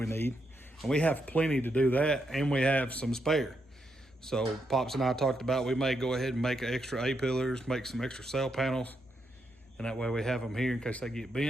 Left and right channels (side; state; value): both; normal; correlation 0.81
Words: need, and we have plenty to do that, and we have some spare. So Pops and I talked about we may go ahead and make extra A-pillars, make some extra sail panels, and that way we have them here in case they get